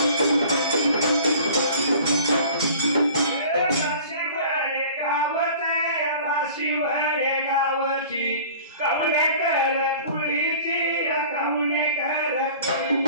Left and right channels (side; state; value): both; inverted; correlation -0.45